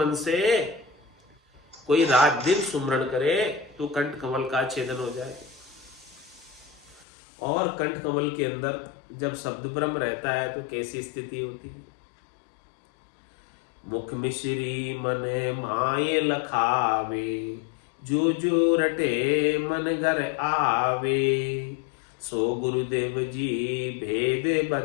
से कोई रात दिन सुमरण करे तो कंठ कमल का छेदन हो जाए। और कंठ कमल के अंदर जब शब्द ब्रह्म रहता है तो कैसी स्थिति होती है? मुख मिश्री मन माये लखावे जो जो रटे मन घर आवे, सो गुरुदेव जी भेद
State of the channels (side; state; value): right; drops out; at 7.1 s